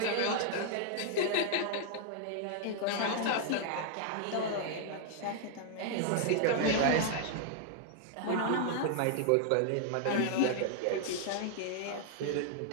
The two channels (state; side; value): different; both; correlation 0.00